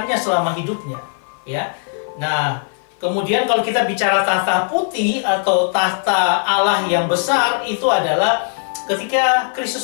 selama hidupnya, ya. Nah, kemudian kalau kita bicara tahta putih atau tahta Allah yang besar, itu adalah ketika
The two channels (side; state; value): right; silent; 57 dB below the other